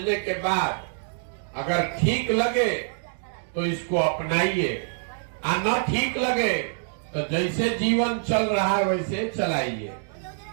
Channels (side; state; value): left; silent; digital silence